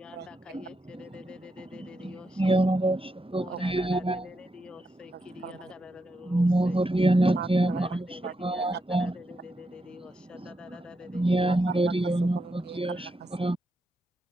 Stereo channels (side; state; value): both; normal; correlation 0.84